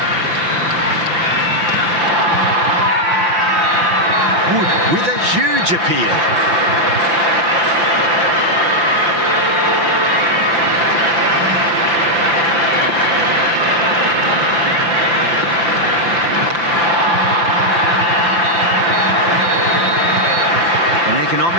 Wood with a huge appeal. An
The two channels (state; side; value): late; left; 5.9 ms